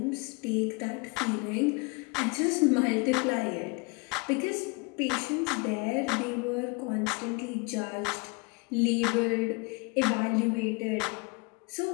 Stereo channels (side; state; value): right; quieter; 29.5 dB